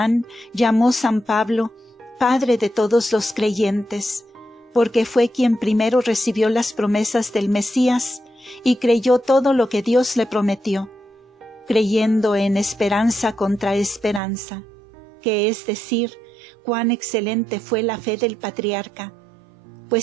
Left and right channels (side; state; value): left; drops out; at 14.2 s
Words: llamó San Pablo Padre de todos los creyentes, porque fue quien primero recibió las promesas del Mesías y creyó todo lo que Dios le prometió, creyendo en esperanza contra esperanza, que es decir, cuán excelente fue la fe del patriarca,